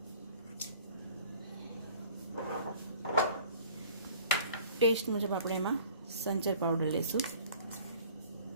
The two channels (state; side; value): inverted; both; correlation -0.49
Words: ટેસ્ટ મુજબ આપણે એમાં સંચર પાવડર લઈશું,